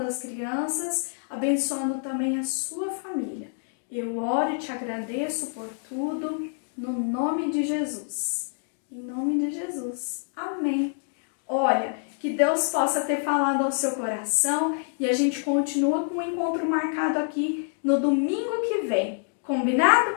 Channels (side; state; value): right; silent; digital silence